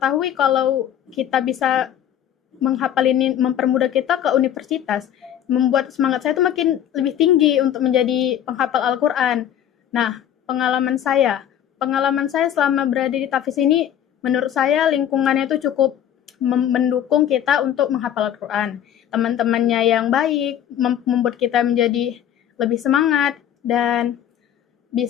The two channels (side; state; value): right; quieter; 10.2 dB